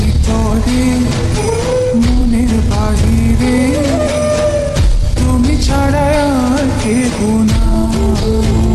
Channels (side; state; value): both; identical; correlation 1.00